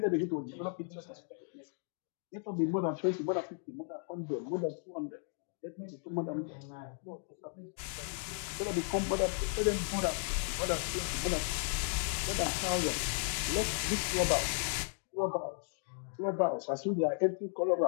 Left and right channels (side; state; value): right; silent; 54 dB below the other